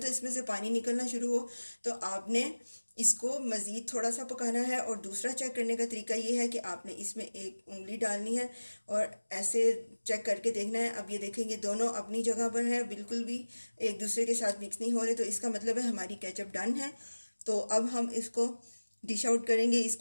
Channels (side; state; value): both; inverted; correlation -1.00